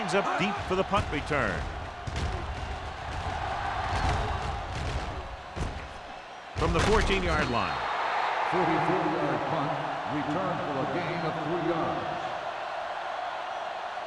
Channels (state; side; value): identical; both; correlation 1.00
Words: up deep for the punt return. From the 14-yard line. 44-yard punt, return for a gain of 3 yards.